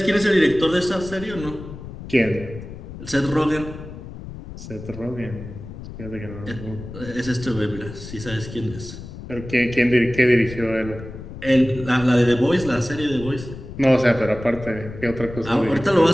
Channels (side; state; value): left; noise; rumble, 12 dB below the sound